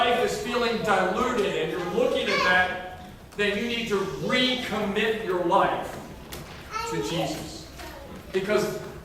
is feeling diluted and you're looking at that, then you need to recommit your life to Jesus. Because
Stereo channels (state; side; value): identical; both; correlation 1.00